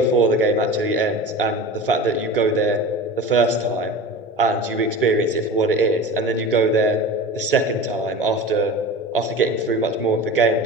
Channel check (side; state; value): both; normal; correlation 0.34